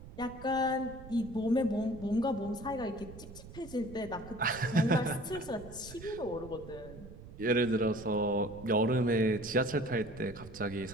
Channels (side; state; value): right; noise; rumble, 16 dB below the sound